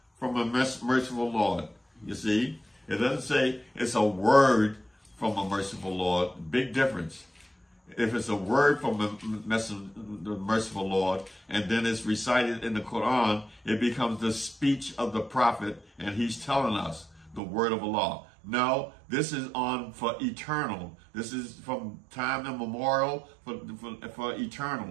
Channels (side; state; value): left; drops out; at 17.4 s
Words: from a merciful Lord. You see? It doesn't say it's a word from a merciful Lord. Big difference. If it's a word from the merciful Lord, and then it's recited in the Quran, it becomes the speech of the prophet, and he's telling us the word of Allah. No, this is on for eternal. This is from time immemorial for